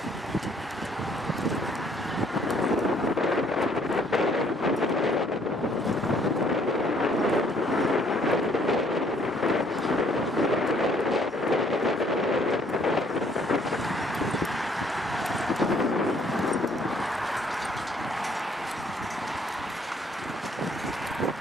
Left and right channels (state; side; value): normal; both; correlation 0.64